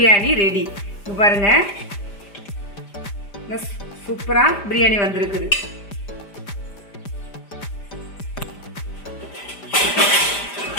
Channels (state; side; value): late; right; 5.0 ms